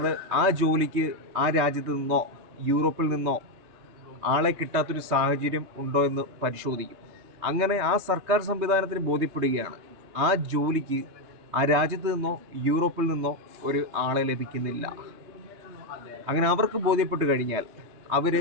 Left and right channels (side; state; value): left; late; 3.2 ms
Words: ആ ജോലിക്ക് ആ രാജ്യത്ത് നിന്നോ യൂറോപ്പിൽ നിന്നോ ആളെ കിട്ടാത്തൊരു സാഹചര്യം ഉണ്ടോ എന്ന് പരിശോധിക്കും. അങ്ങനെ ആ സർക്കാർ സംവിധാനത്തിന് ബോധ്യപ്പെടുകയാണ് ആ ജോലിക്ക് ആ രാജ്യത്ത് നിന്നോ യൂറോപ്പിൽ നിന്നോ ഒരു ആളെ ലഭിക്കുന്നില്ല. അങ്ങനെ അവർക്ക് ബോധ്യപ്പെട്ട് കഴിഞ്ഞാൽ അവർ